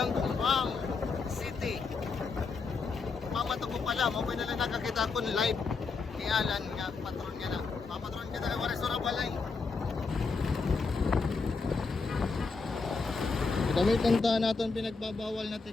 City. Mamata ko pala, mabay na lang nakakita ko live. Ni Alan nga, patron nga na. Mamatron kita na wala sura balay. Gamitan ta natin pinagbabawal na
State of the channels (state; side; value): quieter; right; 4.5 dB